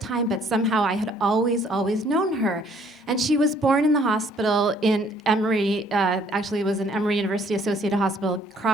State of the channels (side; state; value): both; normal; correlation 0.61